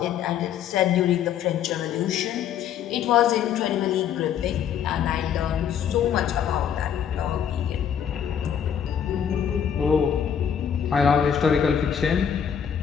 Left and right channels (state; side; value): quieter; right; 8.6 dB